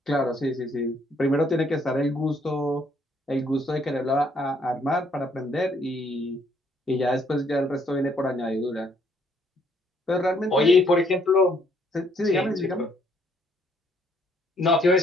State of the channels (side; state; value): both; normal; correlation 0.67